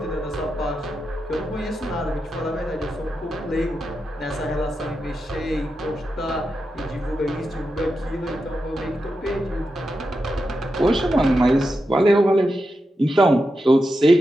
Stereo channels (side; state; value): both; normal; correlation 0.88